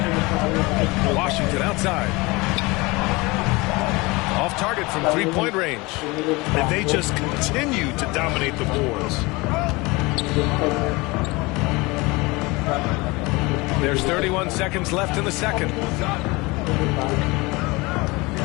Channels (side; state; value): right; quieter; 24.0 dB